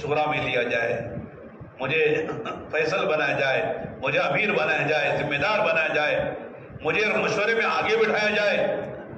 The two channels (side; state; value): both; identical; correlation 1.00